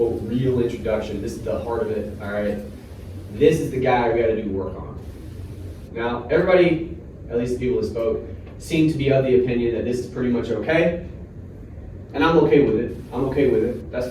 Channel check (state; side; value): identical; both; correlation 1.00